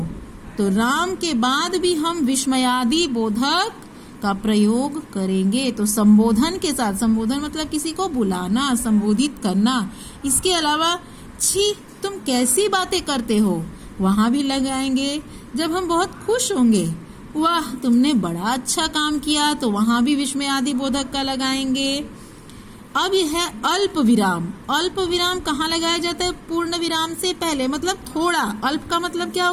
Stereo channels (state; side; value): identical; both; correlation 1.00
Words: तो राम के बाद भी हम विस्मयादि बोधक का प्रयोग करेंगे। तो संबोधन के साथ, संबोधन मतलब किसी को बुलाना, संबोधित करना। इसके अलावा छी तुम कैसी बातें करते हो, वहां भी लगाएंगे। जब हम बहुत खुश होंगे, वाह तुमने बड़ा अच्छा काम किया, तो वहां भी विस्मयादि बोधक का लगाएंगे। अब यह है अल्प विराम। अल्प विराम कहाँ लगाया जाता है? पूर्ण विराम से पहले, मतलब थोड़ा। अल्प का मतलब क्या